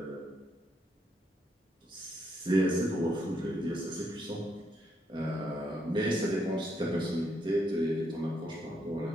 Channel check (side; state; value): both; normal; correlation 0.76